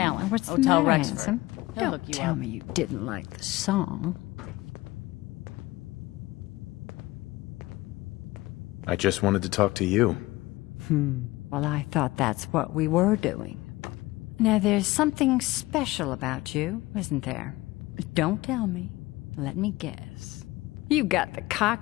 What's the Hotel matter, Rexford. handsome? He'll Don't hook you tell up. me you didn't like the song. I just wanted to talk to you. Well, I thought that's what we were doing. Now, there's something special about you, isn't there? Don't tell me. Let me guess. You got the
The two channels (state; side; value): quieter; right; 19.6 dB